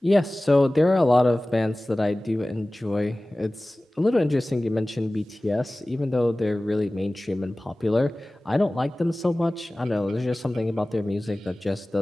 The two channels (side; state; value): both; normal; correlation 0.98